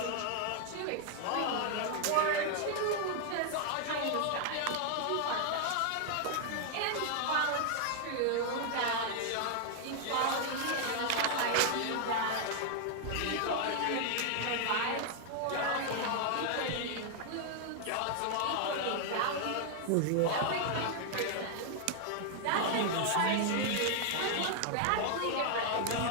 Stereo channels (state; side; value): different; both; correlation 0.00